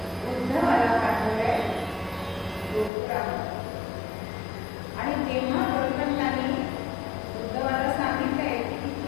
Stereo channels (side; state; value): right; drops out; at 2.9 s